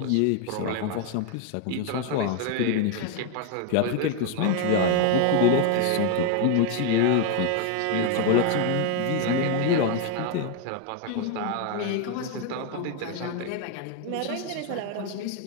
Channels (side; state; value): both; different; correlation 0.01